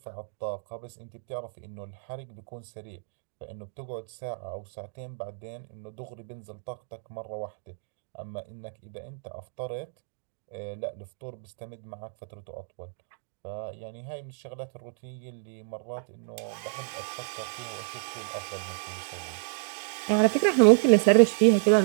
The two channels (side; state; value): left; silent; digital silence